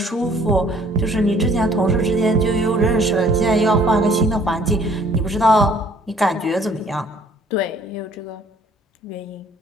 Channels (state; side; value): normal; both; correlation 0.58